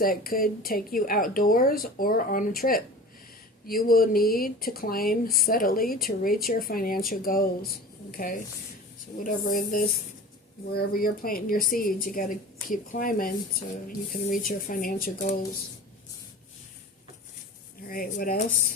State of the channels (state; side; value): normal; both; correlation 0.37